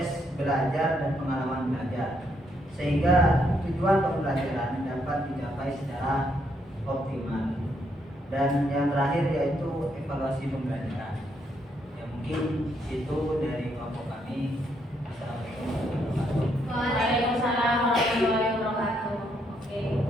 belajar dan pengalaman belajar sehingga tujuan pembelajaran dapat dicapai secara optimal. Dan yang terakhir yaitu evaluasi pembelajaran. Ya, mungkin itu dari kelompok kami. Assalamualaikum warahmatullahi wabarakatuh. Waalaikumsalam warahmatullahi wabarakatuh. Oke.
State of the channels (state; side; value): normal; both; correlation 0.75